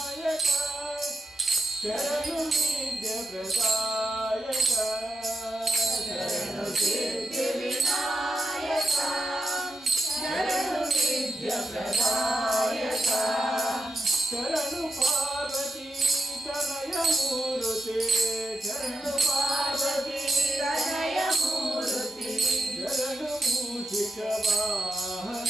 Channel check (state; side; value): normal; both; correlation 0.84